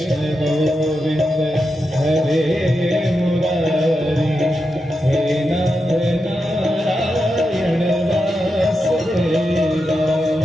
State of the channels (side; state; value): both; normal; correlation 0.87